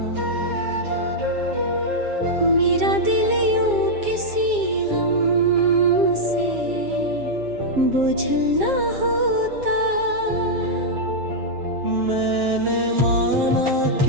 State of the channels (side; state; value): left; late; 7.4 ms